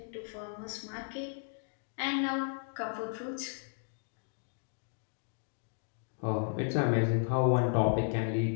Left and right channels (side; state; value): right; silent; 55 dB below the other